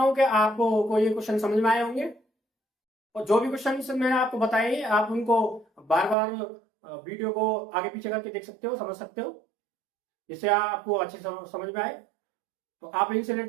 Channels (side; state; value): left; drops out; at 6.2 s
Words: कि आपको कोई ये क्वेश्चन समझ में आए होंगे, और जो भी क्वेश्चन मैंने आपको बताए आप उनको बार बार वीडियो को आगे पीछे करके देख सकते हो, समझ सकते हो, जिससे आपको अच्छे समझ में आए। तो आप इनसे